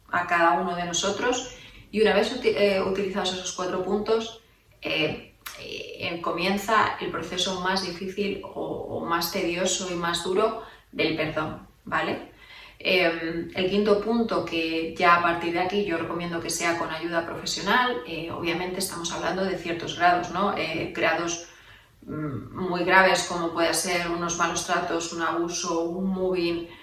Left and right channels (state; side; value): identical; both; correlation 1.00